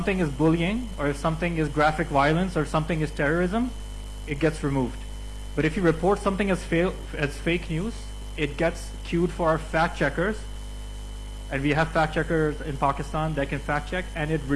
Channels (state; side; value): identical; both; correlation 1.00